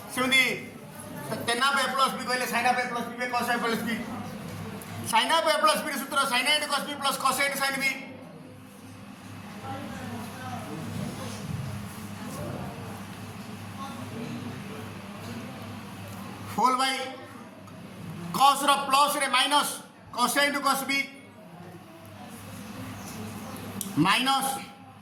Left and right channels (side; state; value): both; identical; correlation 1.00